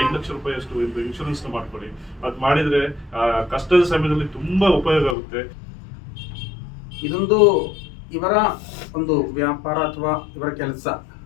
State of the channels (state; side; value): drops out; right; at 5.2 s